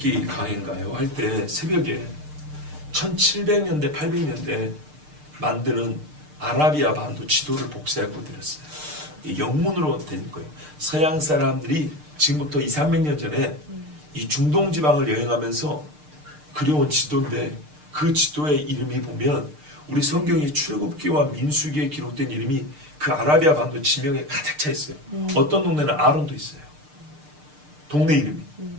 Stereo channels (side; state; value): left; late; 6.6 ms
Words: 강의인가요? 할 때 새벽에 1700년대 800년대 만드는 아라비아 반도 지도를 복사하고 드렸어요. 영문으로 된 거예요. 서양 사람들이 지금부터 200~300년 전에 이 중동 지방을 여행하면서 그려온 지도인데 그 지도의 이름이 보면 우리 성경의 출애굽기와 민수기에 기록된 이름이 그 아라비아 반도 지명에 가득 차 있어요. 어떤 동네는 아론도 있어요. 동네 이름이.